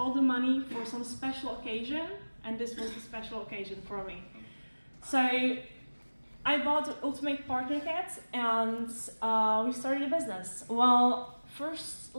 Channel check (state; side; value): inverted; both; correlation -1.00